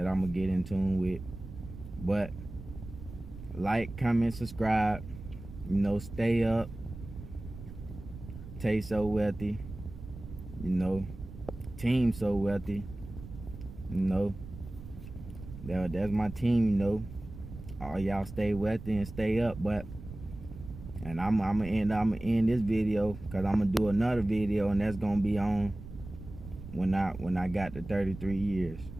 I'm gonna get in tune with. But like, comment, subscribe, stay up. Tay So Wealthy, team So Wealthy, that's my team, all y'all stay wealthy and stay up. But and I'm gonna end this video, because I'm gonna do another video, and that's gonna be on when I got the 33 years,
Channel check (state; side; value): noise; right; rumble, 13 dB below the sound